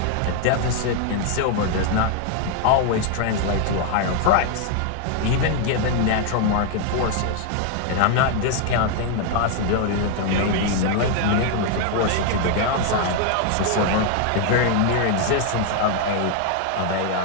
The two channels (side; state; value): both; different; correlation 0.00